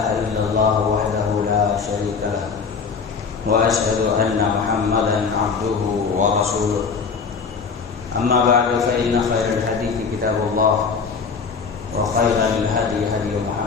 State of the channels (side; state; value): right; quieter; 5.4 dB